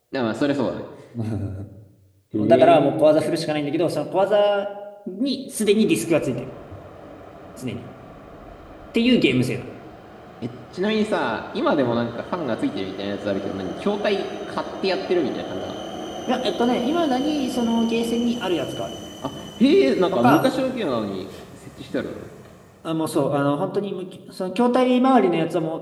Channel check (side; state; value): both; identical; correlation 1.00